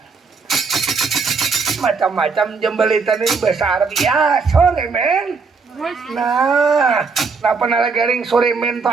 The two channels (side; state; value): left; quieter; 4.8 dB